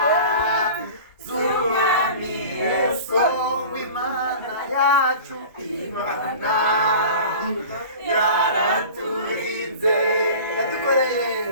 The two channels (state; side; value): inverted; both; correlation -0.38